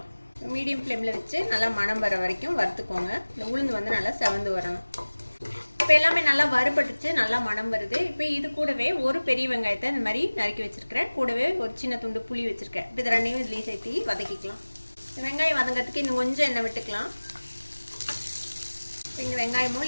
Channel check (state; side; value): inverted; both; correlation -1.00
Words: மீடியம் ஃப்ளேமில் வச்சு நல்லா மணம் வர வரைக்கும் வறுத்துக்கோங்க. இந்த உளுந்து நல்லா செவந்து வரணும். இப்போ எல்லாமே நல்லா வறுபட்டுச்சு, நல்லா மணம் வருது. இப்போ இது கூடவே ஒரு பெரிய வெங்காயத்தை இந்த மாதிரி நறுக்கி வச்சுருக்கிறேன். கூடவே ஒரு சின்ன துண்டு புளி வச்சுருக்கேன். இப்போ இது 2 இதுலேயும் சேர்த்து வதக்கிக்கலாம். வெங்காயம் வதங்கிறதுக்கு இன்னும் கொஞ்சம் எண்ணெய் விட்டுக்கலாம். இப்போ இந்த